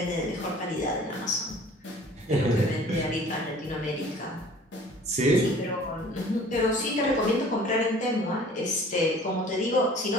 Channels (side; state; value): both; normal; correlation 0.49